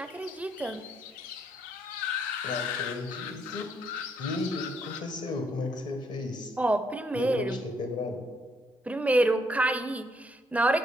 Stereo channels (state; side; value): normal; both; correlation 0.72